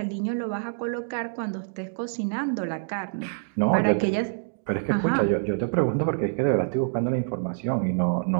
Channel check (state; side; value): silent; left; digital silence